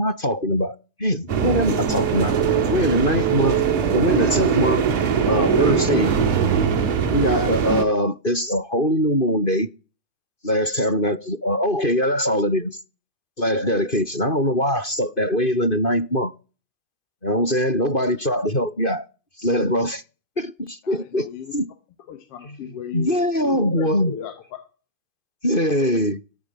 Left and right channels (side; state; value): right; late; 2.5 ms